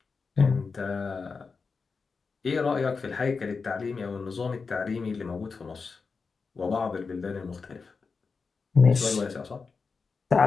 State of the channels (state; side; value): quieter; right; 4.8 dB